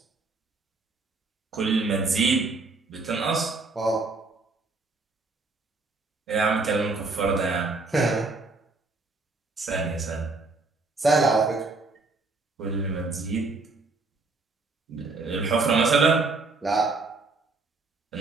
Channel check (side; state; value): left; quieter; 3.7 dB